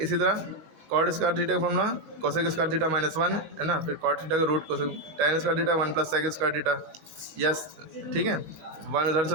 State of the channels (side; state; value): left; late; 20 ms